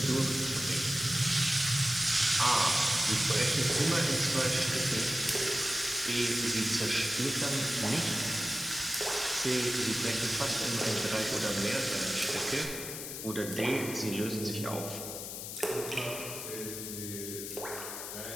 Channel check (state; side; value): noise; left; hiss, 7 dB below the sound